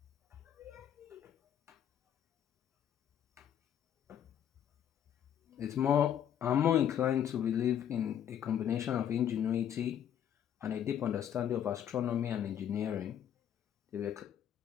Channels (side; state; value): right; quieter; 9.7 dB